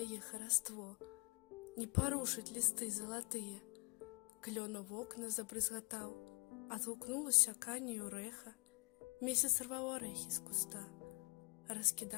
хараство, не порушить листы золотые. Клёна в окна забрызгатаў, адгукнулася канію рэха, месяц рваў арэхі з куста,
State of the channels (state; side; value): quieter; right; 31.1 dB